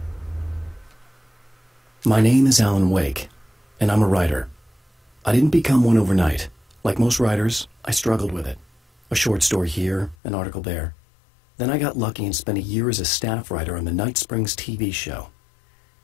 My name is Alan Wake, and I'm a writer. I didn't become one overnight. Like most writers, I struggled with it. A short story here, an article there. Then I got lucky and spent a year as a staff writer on the Night Springs TV show.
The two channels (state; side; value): drops out; right; at 10.2 s